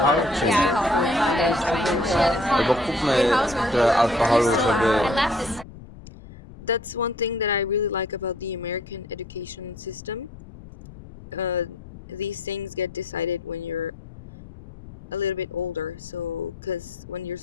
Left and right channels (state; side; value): noise; left; rumble, 17 dB below the sound